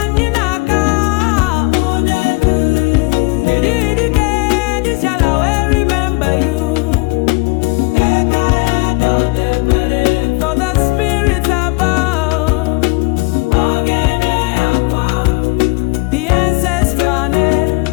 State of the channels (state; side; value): quieter; right; 26.8 dB